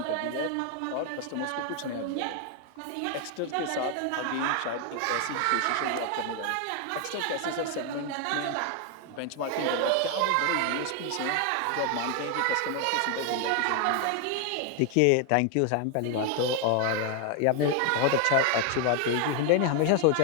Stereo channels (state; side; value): different; both; correlation 0.01